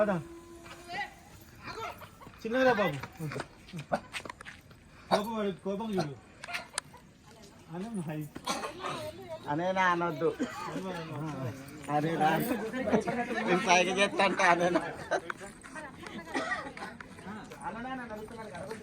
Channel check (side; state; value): both; identical; correlation 1.00